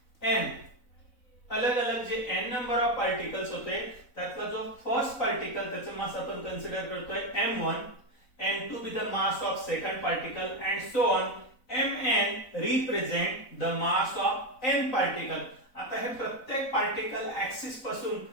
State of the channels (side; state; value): right; late; 4.0 ms